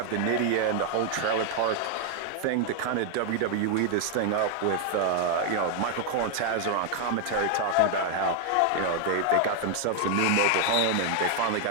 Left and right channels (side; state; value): both; different; correlation 0.00